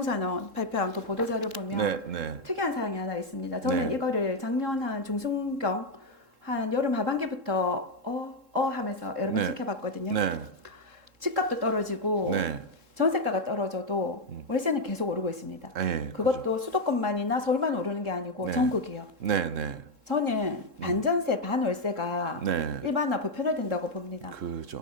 발표한 그 보도 자료 보면 네, 네, 특이한 사항이 하나 있습니다. 저는 네. 이거를 작년 한 중순경 한 여름 하반기부터 하면서 여러 번 네. 지켜봤거든요. 네, 집값도 떨어지고 네. 전세가가 떨어져도 월세는 계속 오르고 있습니다. 네, 그것도 수도권만이나 서울만 오르는 게 아니고 네. 전국이요. 네, 네. 저는 반전세 반월세가 네. 일반화 보편화된다고 봅니다.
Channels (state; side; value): late; left; 3.7 ms